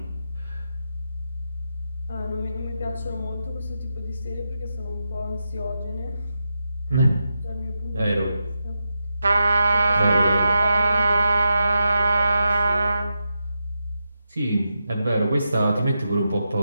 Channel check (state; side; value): inverted; both; correlation -0.87